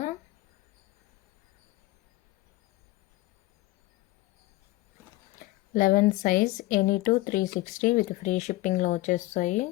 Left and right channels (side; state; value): right; quieter; 18.8 dB